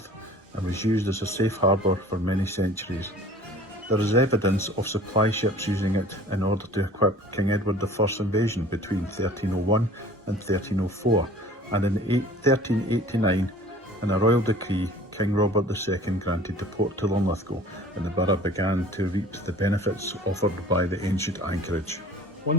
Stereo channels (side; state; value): both; normal; correlation 0.47